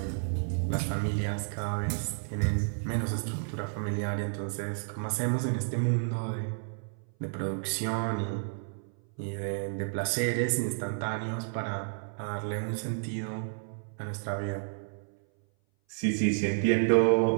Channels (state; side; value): silent; left; 57 dB below the other